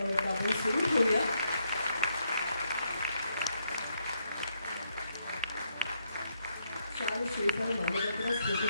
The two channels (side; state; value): both; inverted; correlation -0.76